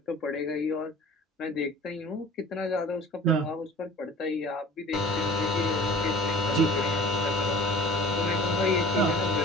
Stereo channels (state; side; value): normal; both; correlation 0.45